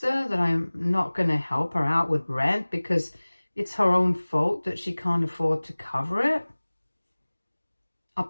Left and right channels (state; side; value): inverted; both; correlation -1.00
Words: that I'm not going to help her out with rent because it's her own fault that she can't afford to cover it?